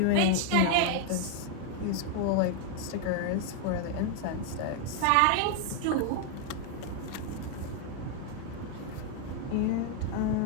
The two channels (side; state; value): both; different; correlation 0.00